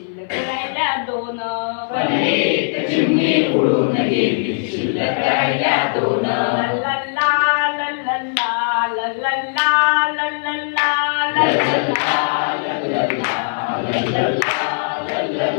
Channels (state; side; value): silent; right; 60 dB below the other